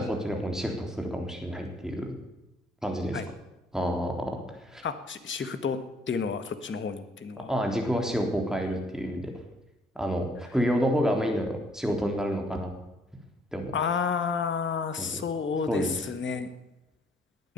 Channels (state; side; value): normal; both; correlation 0.64